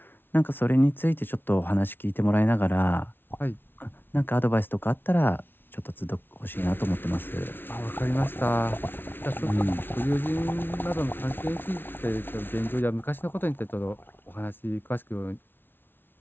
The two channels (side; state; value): right; late; 0.10 ms